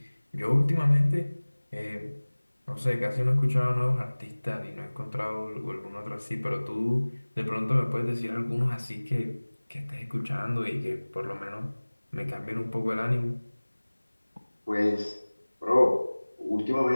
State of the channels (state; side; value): inverted; both; correlation -1.00